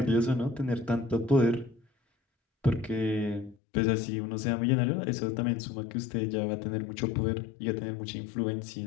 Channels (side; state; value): right; drops out; at 3.6 s